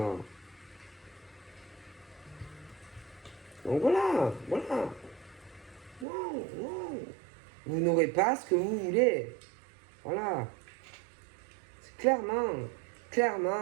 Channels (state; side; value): drops out; left; at 6.1 s